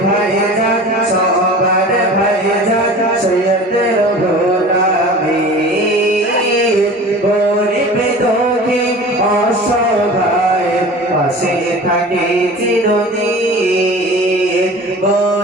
ভাইজান সবার ভাইজান সৈয়দ রুহুল আমিন। গরিব দুঃখী অসহায়ের পাশে থাকে চিরদিন।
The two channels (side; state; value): both; normal; correlation 0.39